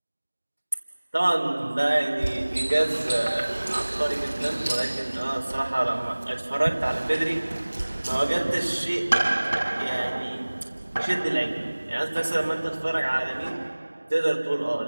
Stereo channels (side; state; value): both; inverted; correlation -1.00